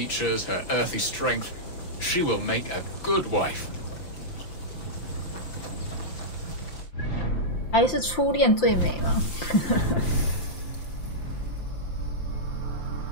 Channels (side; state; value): right; late; 5.8 ms